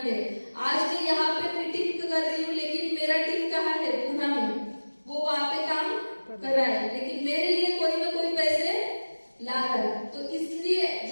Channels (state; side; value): inverted; both; correlation -1.00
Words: है। आज मैं यहाँ पे मीटिंग कर रही हूँ लेकिन मेरा टीम कहाँ है, पुणे में, वो वहां पे काम कर रहा है, लेकिन मेरे लिए कोई ना कोई पैसे ला रहा है। तो इसलिए